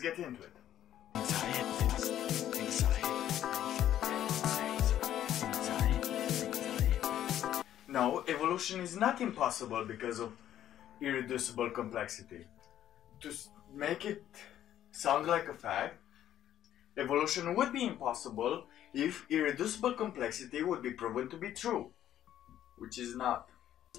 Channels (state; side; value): quieter; right; 11.5 dB